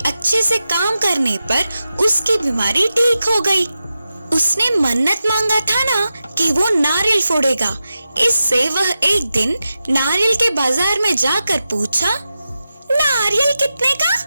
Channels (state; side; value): inverted; both; correlation -0.91